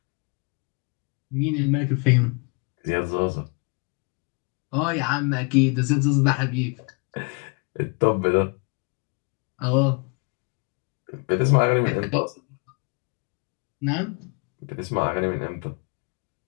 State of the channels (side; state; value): right; quieter; 34.3 dB